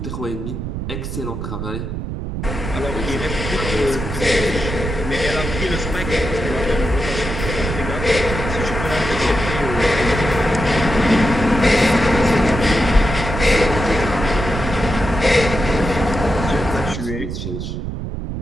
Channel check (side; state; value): right; noise; rumble, 5 dB below the sound